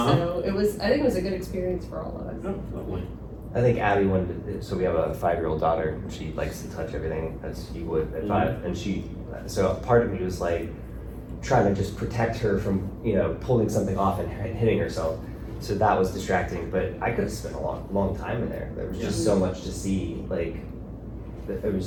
so it was. I think it was a good experience for all of us." Oh, lovely. I think Abby wanted to, so we have a 5-year-old daughter, and she likes to touch everything as you would at 5, and so part of me was like trying to just protect her from, pulling something off and hitting herself. So that was distracting, but I could have spent a long time in there. There was just so much to see. Like, it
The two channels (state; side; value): identical; both; correlation 1.00